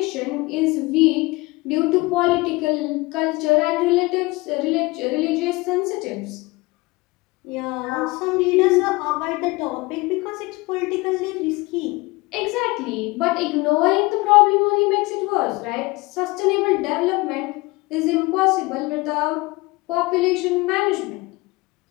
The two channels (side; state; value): right; quieter; 23.1 dB